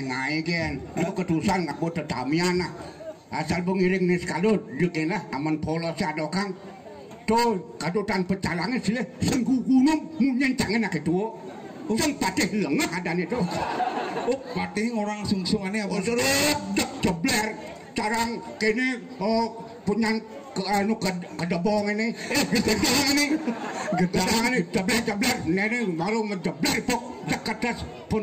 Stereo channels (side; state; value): both; identical; correlation 1.00